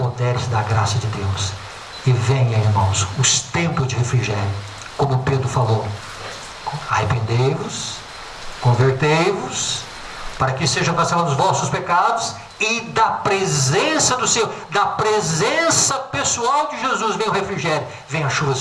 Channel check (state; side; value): identical; both; correlation 1.00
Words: da graça de Deus e venha, irmãos, os tempos de refrigério, como Pedro falou: arrependei-vos, convertei-vos, para que sejam cancelados os vossos pecados, e da presença do Senhor, da presença pessoal de Jesus, vem o refrigério, vem a chuva